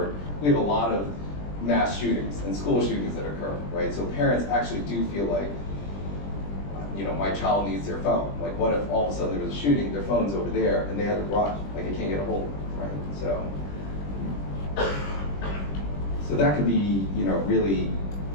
we have a lot of mass shootings and school shootings that occur, right? So parents actually do feel like, you know, my child needs their phone. Like, what if all of a sudden there was a shooting, their phone's over there, and they had to run, like, they can't get a hold of it, right? So that can be, you know, really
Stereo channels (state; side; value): late; right; 20 ms